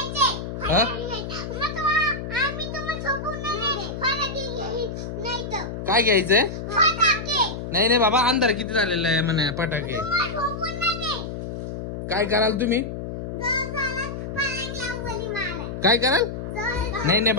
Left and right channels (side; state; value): left; noise; hum, 6 dB below the sound